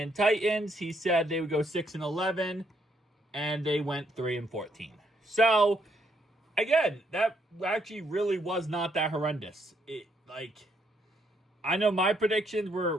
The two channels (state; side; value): normal; both; correlation 0.73